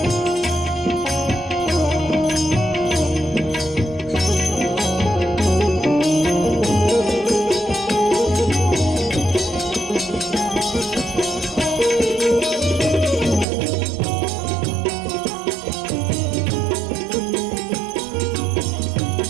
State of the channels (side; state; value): left; drops out; at 13.5 s